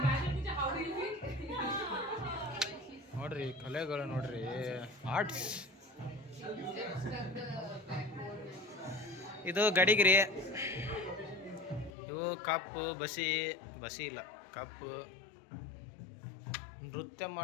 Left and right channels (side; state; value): right; drops out; at 11.9 s